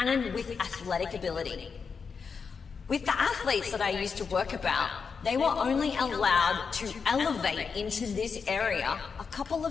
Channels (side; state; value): right; quieter; 5.6 dB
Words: with athletic ability. With the athletes that I used to work about, they were only allowed to elevate into this area a couple